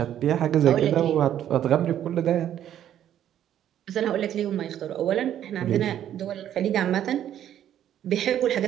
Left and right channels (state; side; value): quieter; left; 10.8 dB